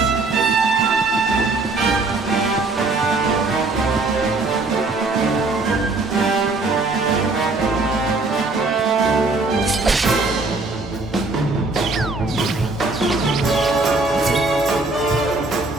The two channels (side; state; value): left; quieter; 3.4 dB